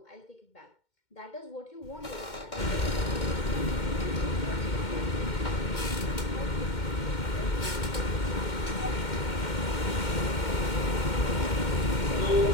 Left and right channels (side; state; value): right; late; 2.1 ms